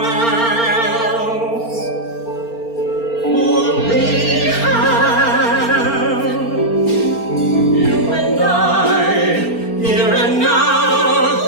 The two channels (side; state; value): right; late; 4.4 ms